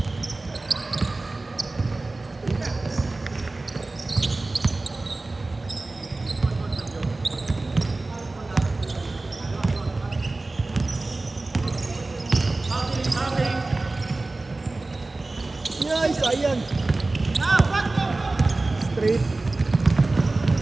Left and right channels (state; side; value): quieter; left; 3.2 dB